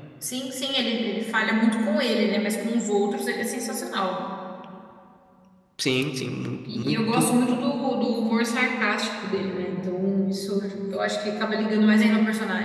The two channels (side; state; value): both; identical; correlation 1.00